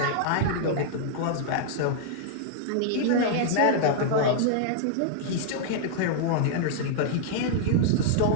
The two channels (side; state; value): both; different; correlation -0.02